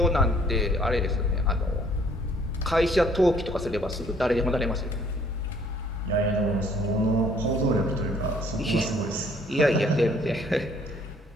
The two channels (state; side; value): normal; both; correlation 0.61